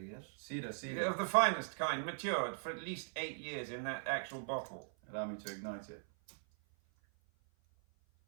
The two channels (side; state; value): left; silent; 51 dB below the other